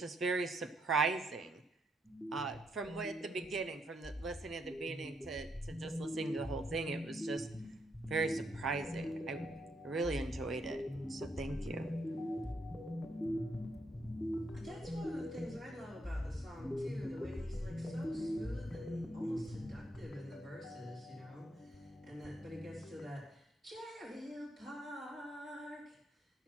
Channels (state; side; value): normal; both; correlation 0.77